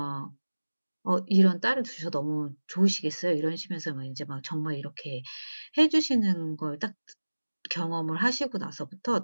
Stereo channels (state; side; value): inverted; both; correlation -1.00